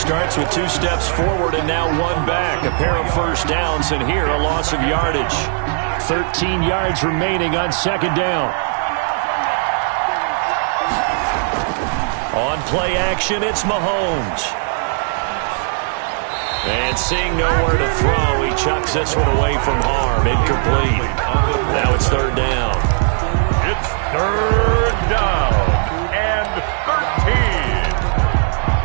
with 2 steps forward and now 1 back. A pair of first downs, and here a loss of yardage. 13 yards remaining on second down. On play action, it's Mahomes. And seeing nowhere to throw, he chucks this one away from harm. Incomplete. Now it's third down. It's third down and 13.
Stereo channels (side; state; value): left; silent; 67 dB below the other